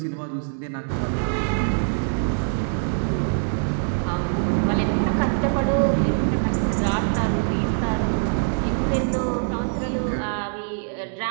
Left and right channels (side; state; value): left; silent; digital silence